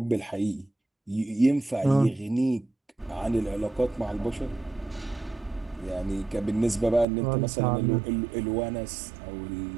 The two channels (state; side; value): drops out; left; at 7.1 s